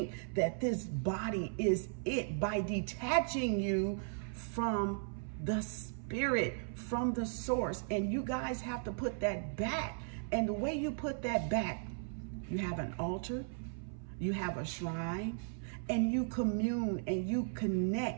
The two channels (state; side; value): silent; left; 53 dB below the other